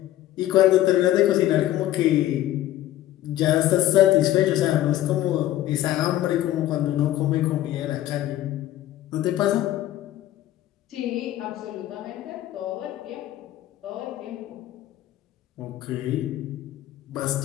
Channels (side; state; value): right; quieter; 13.8 dB